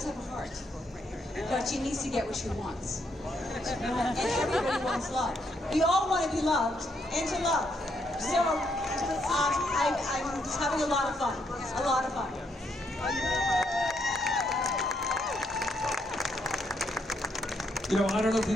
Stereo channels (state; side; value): normal; both; correlation 0.75